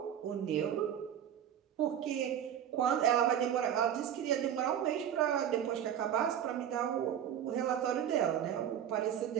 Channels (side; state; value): left; quieter; 9.7 dB